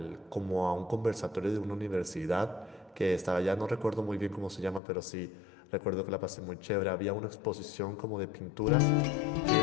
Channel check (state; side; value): drops out; right; at 4.8 s